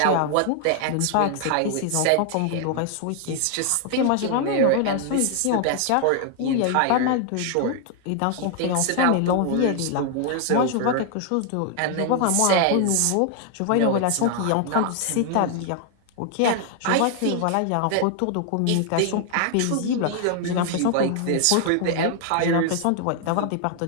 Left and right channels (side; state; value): both; different; correlation 0.00